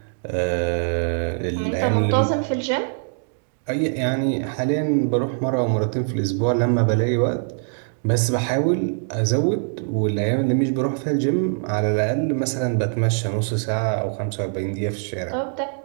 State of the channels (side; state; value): left; silent; 64 dB below the other